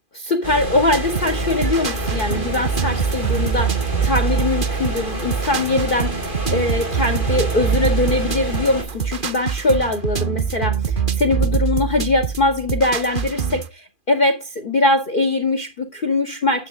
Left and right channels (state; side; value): late; right; 2.4 ms